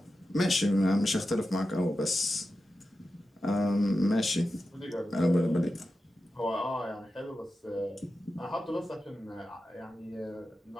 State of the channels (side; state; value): both; normal; correlation 0.91